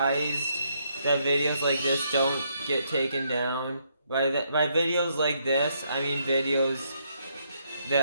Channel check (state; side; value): inverted; both; correlation -0.74